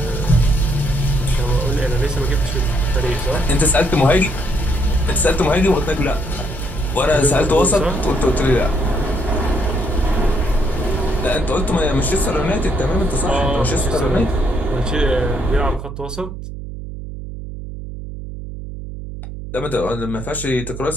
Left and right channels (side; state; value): right; noise; hum, 10 dB below the sound